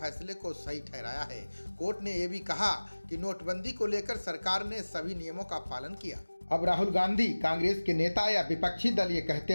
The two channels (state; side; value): inverted; both; correlation -1.00